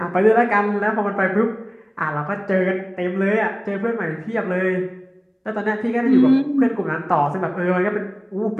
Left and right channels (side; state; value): both; identical; correlation 1.00